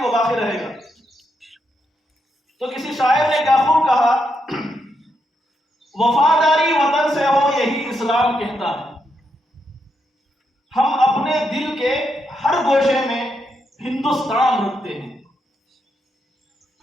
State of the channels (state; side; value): normal; both; correlation 0.81